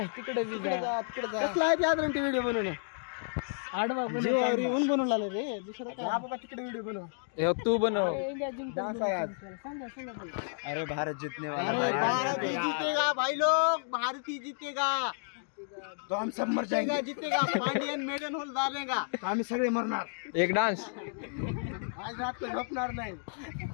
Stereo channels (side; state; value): right; silent; digital silence